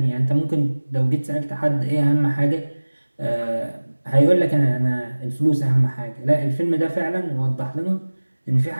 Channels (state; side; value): inverted; both; correlation -1.00